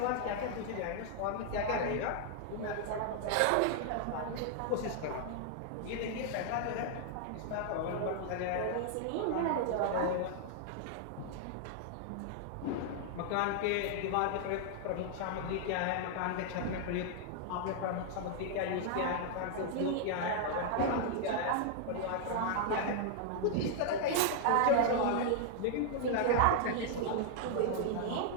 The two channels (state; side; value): different; both; correlation 0.00